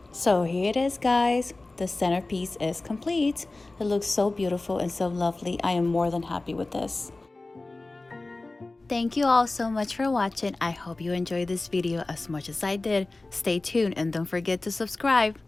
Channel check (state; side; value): quieter; right; 3.1 dB